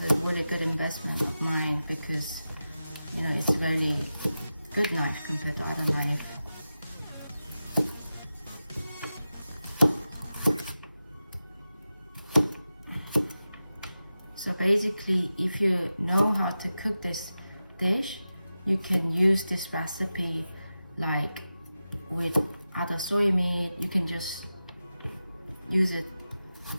a really good investment of mine because it's a really good knife compared to other knives. So basically, if you know how to cook this dish, you can use this recipe like with other soy meat. You can just use it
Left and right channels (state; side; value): inverted; both; correlation -0.93